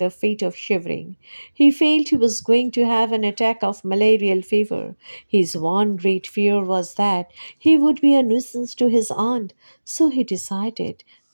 a fit of shivering. He felt he was going to have an attack of malarial fever. His one great fear was that he would be a nuisance to his aunt, so he decided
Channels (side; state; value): both; inverted; correlation -1.00